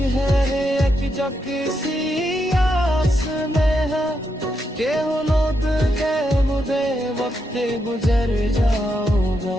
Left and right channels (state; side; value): normal; both; correlation 0.82